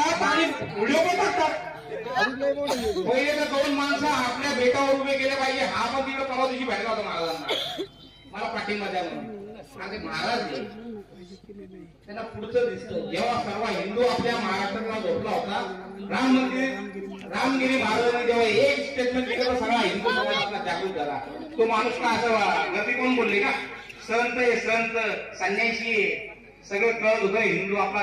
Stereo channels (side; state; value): both; identical; correlation 1.00